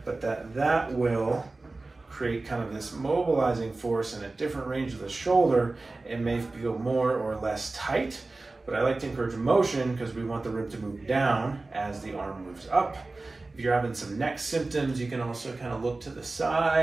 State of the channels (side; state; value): left; quieter; 3.3 dB